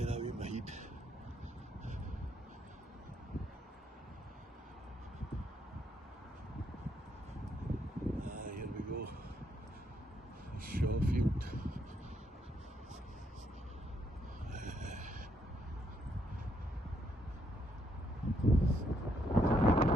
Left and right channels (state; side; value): normal; both; correlation 0.74